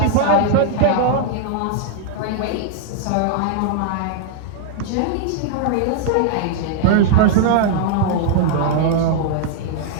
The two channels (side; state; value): both; different; correlation 0.00